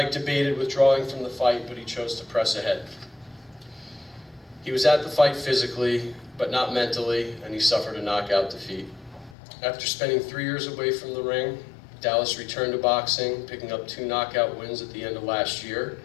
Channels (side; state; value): right; drops out; at 9.3 s